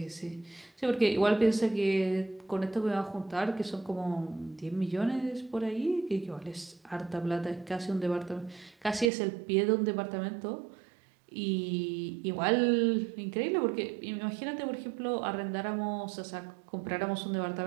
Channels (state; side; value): drops out; left; at 9.1 s